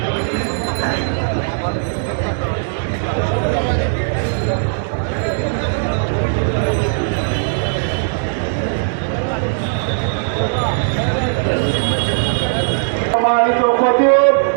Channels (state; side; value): silent; left; digital silence